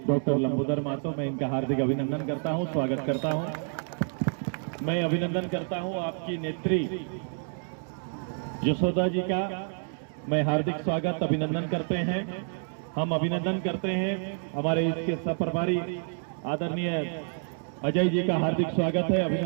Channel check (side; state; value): left; silent; 59 dB below the other